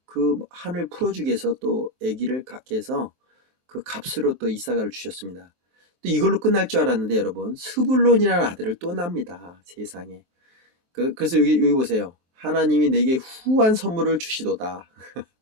그 한을 풀어주기 위해서 또 아기를 갖게 해서 그 값으로 또 이사가를 주셨습니다. 또 이걸로 끝날 줄 알았는데 여러분, 스불론이라는 아들을 또 낳습니다. 세상에. 그래서 여기 보세요. 하나님이 내게 후한 선물을 주시도다.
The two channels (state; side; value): late; left; 23 ms